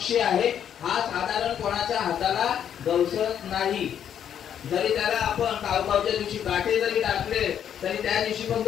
आहे. हा साधारण कोणाच्या हाताला गवसत नाही. जरी त्याला आपण कावकावच्या दिवशी गाठे जरी टाकले तरी त्या दिवशी पण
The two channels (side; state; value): right; quieter; 9.2 dB